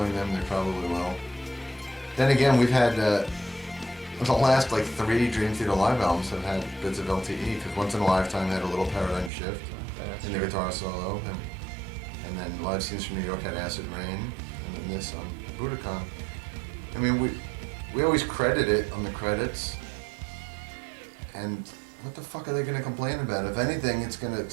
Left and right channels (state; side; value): drops out; left; at 9.3 s